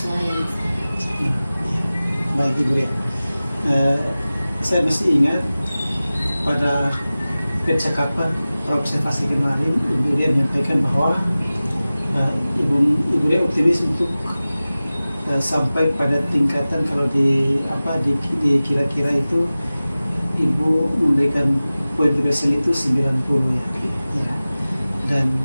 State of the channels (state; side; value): inverted; both; correlation -0.97